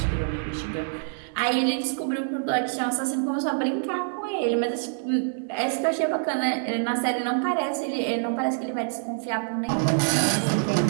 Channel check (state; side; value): silent; left; digital silence